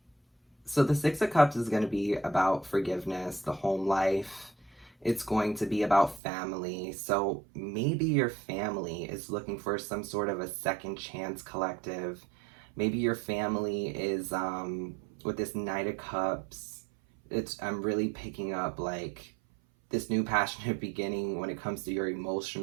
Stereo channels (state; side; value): drops out; left; at 6.2 s